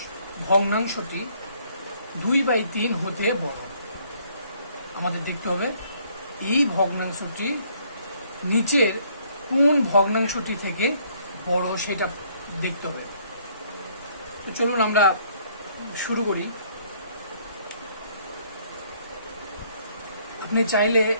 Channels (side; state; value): both; inverted; correlation -0.64